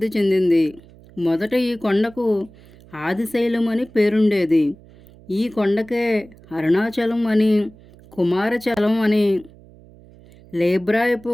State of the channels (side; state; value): right; noise; hum, 24 dB below the sound